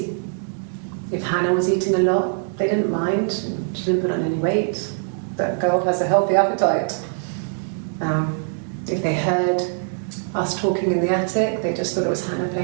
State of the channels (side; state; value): left; silent; digital silence